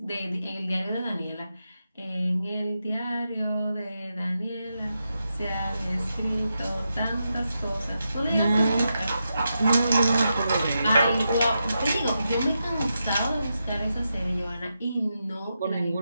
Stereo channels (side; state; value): both; inverted; correlation -0.87